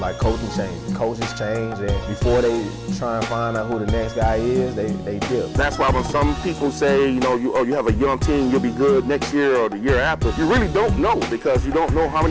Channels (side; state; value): both; identical; correlation 1.00